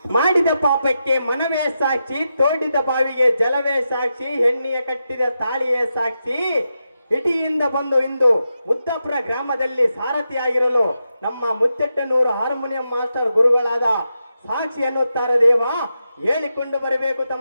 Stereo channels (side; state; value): both; inverted; correlation -0.88